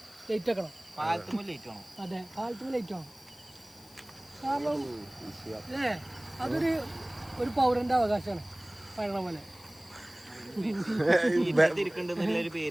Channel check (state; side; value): noise; left; hiss, 24 dB below the sound